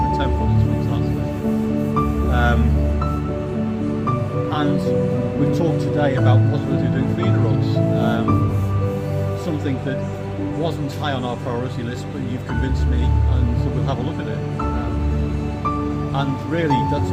10-foot, it's fantastic. And we've talked today about the possibility of doing feeder rods, something that wasn't high on our priority list, but you've convinced me, and so we'll have a look at it. And really, that's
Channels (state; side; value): identical; both; correlation 1.00